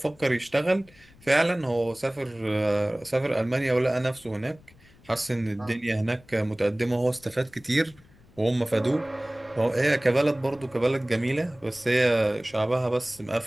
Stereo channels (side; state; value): left; noise; rumble, 26 dB below the sound